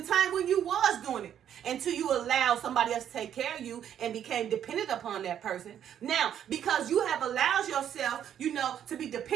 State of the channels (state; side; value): quieter; left; 9.7 dB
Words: a time when you was doing it until you allowed somebody else to take care of you and became dependent upon that person. Now, because you have allowed yourself, to be